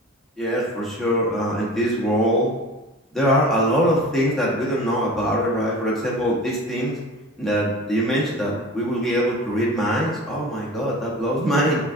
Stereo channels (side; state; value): both; normal; correlation 0.38